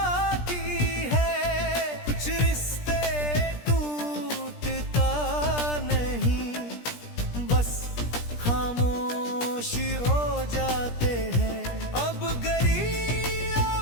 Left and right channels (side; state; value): right; late; 17 ms